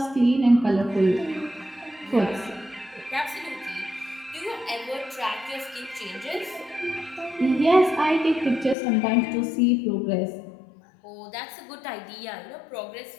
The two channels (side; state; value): right; drops out; at 8.8 s